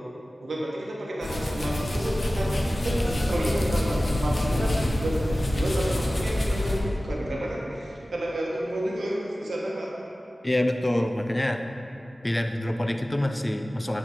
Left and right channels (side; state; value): both; normal; correlation 0.96